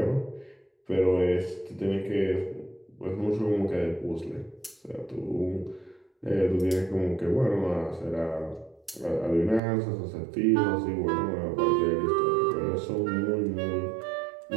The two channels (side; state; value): left; drops out; at 9.6 s